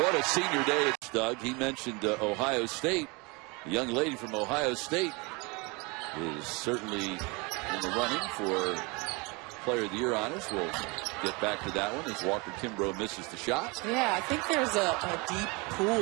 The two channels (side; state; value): left; quieter; 28.1 dB